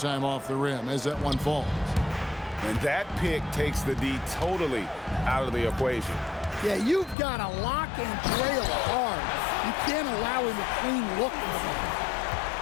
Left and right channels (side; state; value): right; drops out; at 7.2 s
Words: off the rim as that one falls. And that pick takes the D totally out of the equation. Yeah, you've got to lock and trail hard. You can't allow him a clean look.